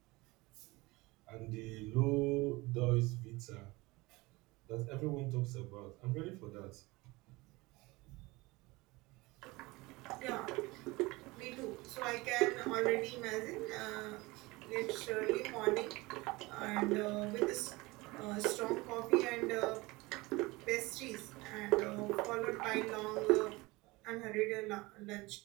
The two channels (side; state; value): left; quieter; 22.5 dB